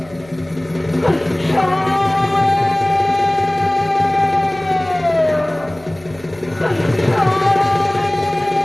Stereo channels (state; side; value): noise; left; hum, 24 dB below the sound